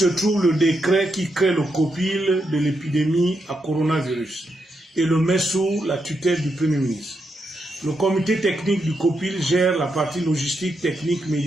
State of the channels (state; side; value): normal; both; correlation 0.83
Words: trouve le décret qui crée le COPIL de l'épidémie à coronavirus et le met sous la tutelle du Premier ministre. Le comité technique du COPIL gère la partie logistique, technique,